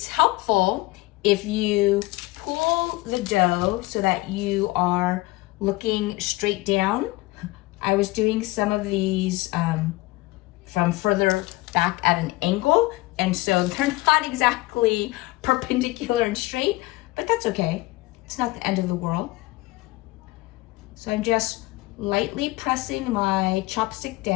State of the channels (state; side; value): quieter; right; 20.6 dB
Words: helpful if you pull the dough so that you are looking straight down. I was doing some of these from further back at an angle, and so they're not exactly perpendicular and straight, but that's okay. It's not the end of the world. So I'm just lightly pressing my chopstick